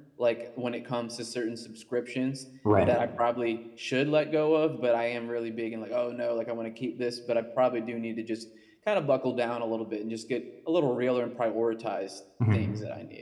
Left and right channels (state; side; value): identical; both; correlation 1.00